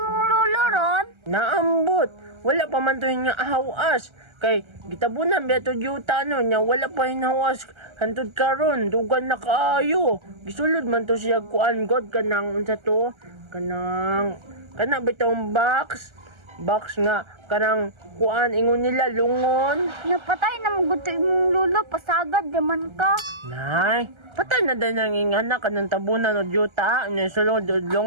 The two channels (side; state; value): left; late; 1.3 ms